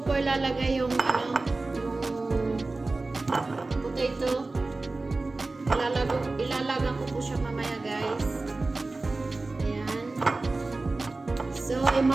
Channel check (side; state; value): left; quieter; 3.3 dB